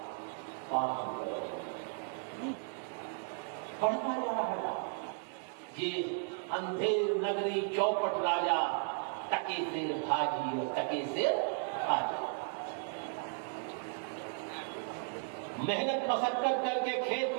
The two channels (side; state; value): left; silent; 54 dB below the other